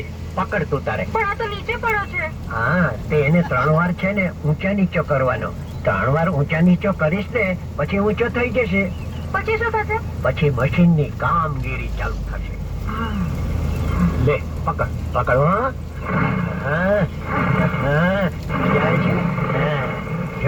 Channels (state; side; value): identical; both; correlation 1.00